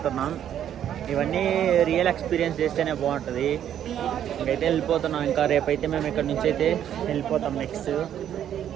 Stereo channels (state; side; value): quieter; left; 10.2 dB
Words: ఇవన్నీ రియల్ ఎక్స్పీరియన్స్ చేస్తేనే బాగుంటుంది. ఇంకైతే వెళ్ళిపోతున్నాం. ఇంకా రేపైతే మేము ఇక్కడ నుంచి అయితే వెళ్ళిపోతాం. నెక్స్ట్